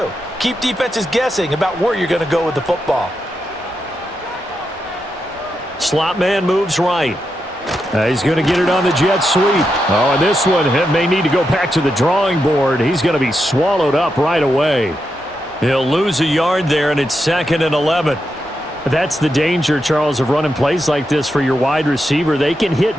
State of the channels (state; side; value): normal; both; correlation 0.85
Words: Keep defenses guessing about where you're going to go with the football. Slot man moves right. He's going to get it on the jet sweep. Oh, and this one may need to go back to the drawing board. He's going to be swallowed up right away. He'll lose a yard there, and it's 2nd and 11. That's the danger, Charles, of running plays like this for your wide receiver. They can